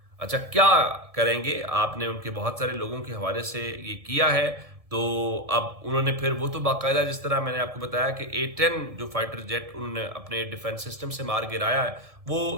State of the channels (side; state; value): left; late; 1.7 ms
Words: اچھا، کیا کریں گے؟ آپ نے ان کے بہت سارے لوگوں کے حوالے سے یہ کیا ہے. تو اب انہوں نے پھر وہ تو باقاعدہ جس طرح میں نے آپ کو بتایا کہ A-10 جو فائٹر جیٹ انہوں نے اپنے ڈیفنس سسٹم سے مار گرایا ہے،